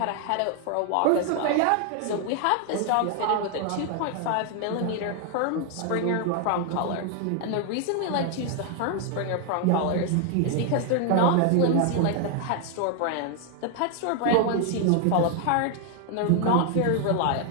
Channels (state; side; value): different; both; correlation 0.00